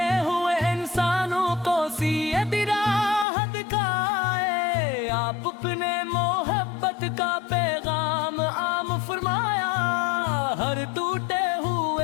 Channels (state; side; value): drops out; right; at 3.2 s